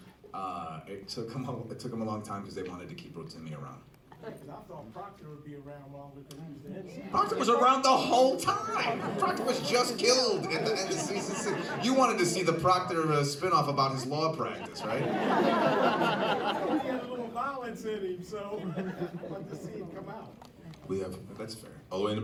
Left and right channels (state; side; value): identical; both; correlation 1.00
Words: it took him a long time because they wanted to keep Rotimi around. Because I thought Proctor would be around longer because he was the head. Proctor was around the whole time. Proctor was just killed at the end of season 6. You wanted to see the Proctor spinoff about his law practice, right? He had a little violence in him, so I'd like to see him come out. That's fair. All the way in